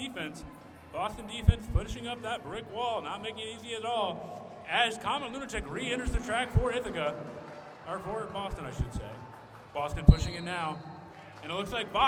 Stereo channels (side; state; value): both; identical; correlation 1.00